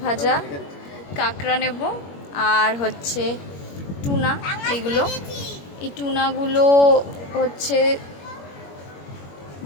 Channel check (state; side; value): late; right; 21 ms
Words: ভাজা, কাঁকড়া নেব, আর হচ্ছে টুনা। এইগুলো, এই টুনাগুলো হচ্ছে